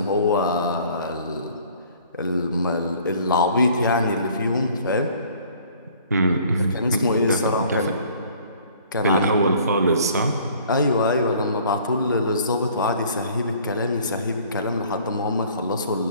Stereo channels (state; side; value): inverted; both; correlation -0.54